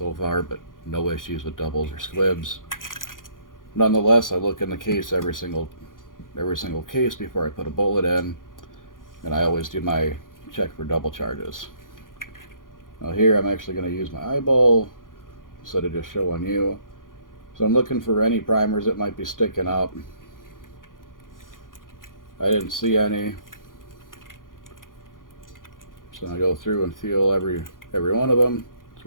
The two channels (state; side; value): late; right; 0.90 ms